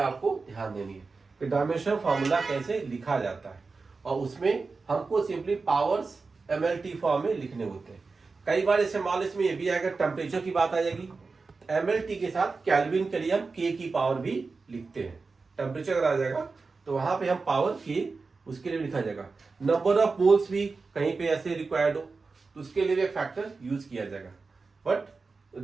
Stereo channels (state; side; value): quieter; left; 4.2 dB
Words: ध्यान देनी है कि डायमेंशन फॉर्मूला कैसे लिखा जाता है, और उसमें हमको सिंपली पावर्स MLT फॉर्म में लिखने होते हैं. कई बार ऐसे मान इसमें ये भी आएगा, टेम्परेचर की बात आ जाएगी, MLT के साथ केल्विन के लिए हम K की पावर भी लिखते हैं. टेम्परेचर अगर आ जाएगा तो वहां पे हम पावर K उसके लिए लिखा जाएगा. नंबर ऑफ मोल्स भी कहीं पे ऐसे रिक्वायर्ड हो तो उसके लिए भी एक फैक्टर यूज किया जाएगा. But